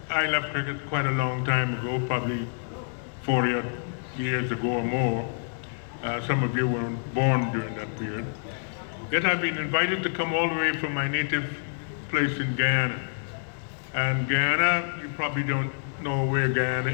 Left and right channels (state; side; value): silent; right; 58 dB below the other